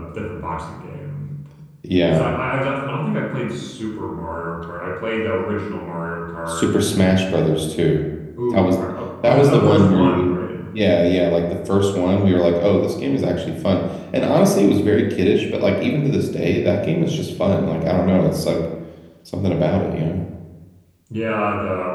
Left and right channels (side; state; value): both; identical; correlation 1.00